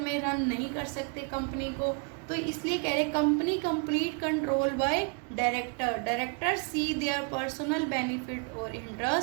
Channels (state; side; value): quieter; left; 35.0 dB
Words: रन नहीं कर सकते कंपनी को। तो इसलिए कह रहे company complete control by director. Director see their personal benefit और